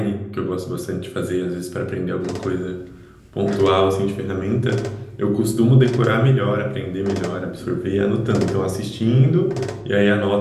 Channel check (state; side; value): identical; both; correlation 1.00